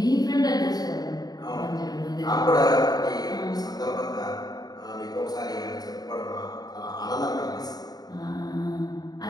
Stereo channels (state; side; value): late; right; 0.19 ms